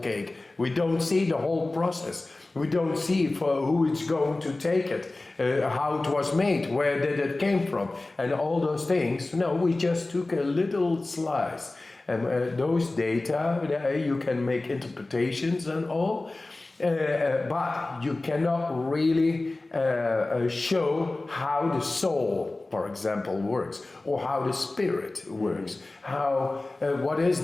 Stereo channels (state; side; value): quieter; right; 3.0 dB